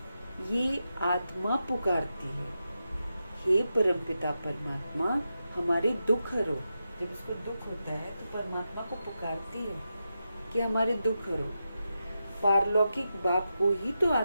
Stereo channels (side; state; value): both; inverted; correlation -0.88